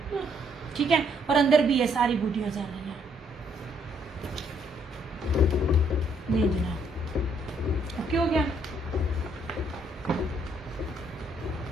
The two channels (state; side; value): normal; both; correlation 0.69